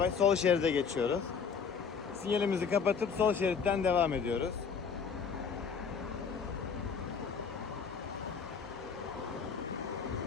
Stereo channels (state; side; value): quieter; right; 6.0 dB